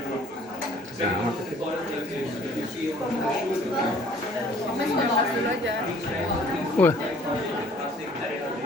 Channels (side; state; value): both; normal; correlation 0.55